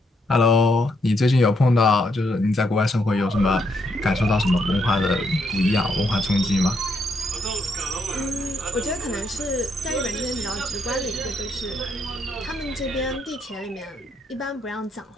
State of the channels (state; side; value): normal; both; correlation 0.76